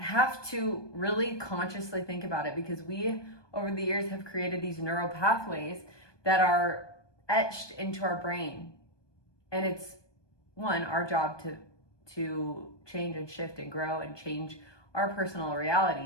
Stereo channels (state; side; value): late; right; 1.2 ms